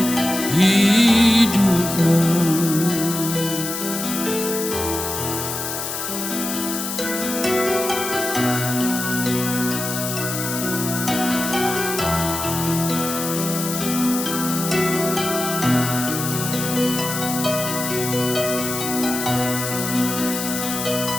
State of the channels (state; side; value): noise; left; hiss, 4 dB below the sound